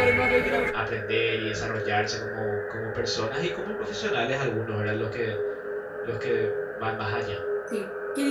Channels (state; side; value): identical; both; correlation 1.00